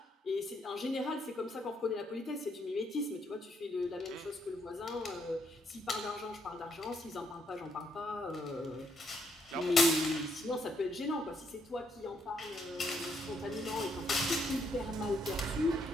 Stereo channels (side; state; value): both; normal; correlation 0.74